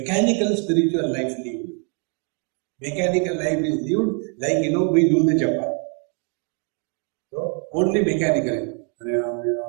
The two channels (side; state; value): left; quieter; 39.2 dB